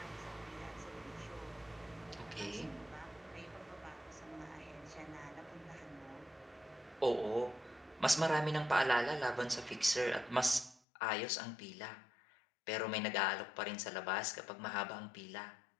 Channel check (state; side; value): drops out; right; at 10.8 s